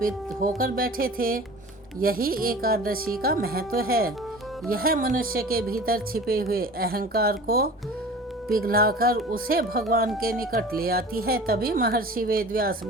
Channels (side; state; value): both; normal; correlation 0.40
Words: होकर बैठे थे। यही एकादशी का महत्व है। यह मनुष्य के भीतर छिपे हुए अहंकार को पिघलाकर उसे भगवान के निकट ले आती है। तभी महर्षि वेदव्यास